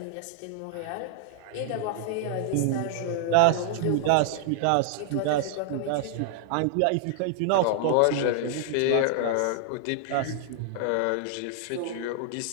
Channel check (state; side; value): different; both; correlation 0.00